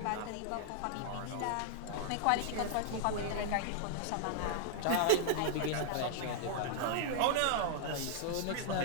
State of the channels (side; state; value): both; different; correlation -0.01